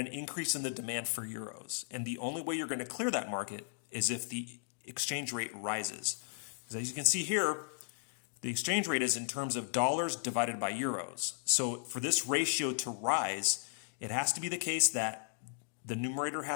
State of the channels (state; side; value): silent; right; digital silence